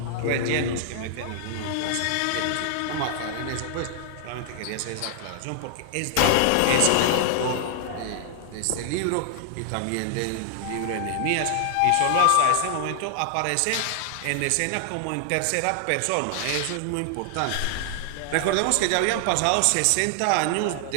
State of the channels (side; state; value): both; different; correlation 0.00